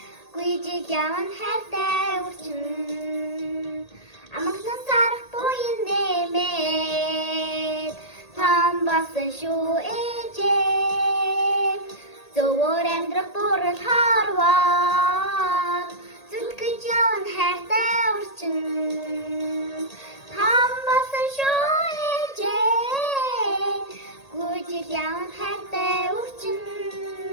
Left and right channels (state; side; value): late; right; 1.8 ms